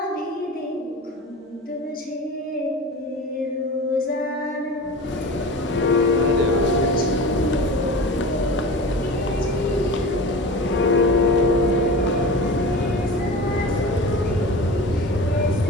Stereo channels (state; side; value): normal; both; correlation 0.34